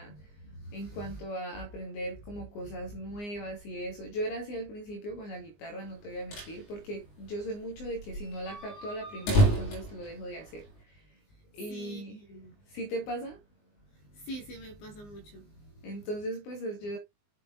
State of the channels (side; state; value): right; late; 19 ms